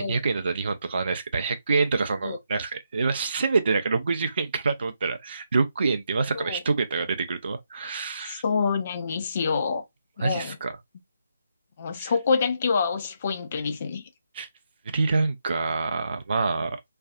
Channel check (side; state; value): both; inverted; correlation -0.80